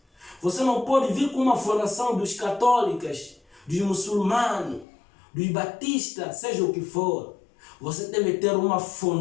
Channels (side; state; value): right; drops out; at 4.9 s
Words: Você não pode vir com uma fundação dos católicos, dos muçulmanos, dos batistas, seja o que for. Você deve ter uma